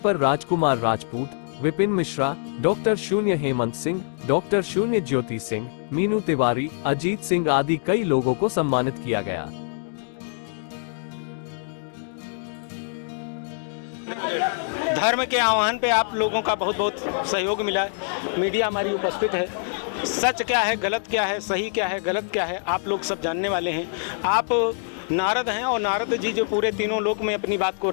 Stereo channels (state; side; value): silent; right; digital silence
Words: राजकुमार राजपूत, विपिन मिश्रा, डॉक्टर शून्य हेमंत सिंह, डॉक्टर शून्य ज्योति सिंह, मीनू तिवारी, अजीत सिंह आदि कई लोगों को सम्मानित किया गया। धर्म के आह्वान पे आप लोगों का बहुत बहुत सहयोग मिला है। मीडिया हमारी उपस्थित है। सच क्या है, गलत क्या है, सही क्या है, गलत क्या है, आप लोग सब जानने वाले हैं। आप नारद हैं और नारद जी जो पूरे तीनों लोक में अपनी बात को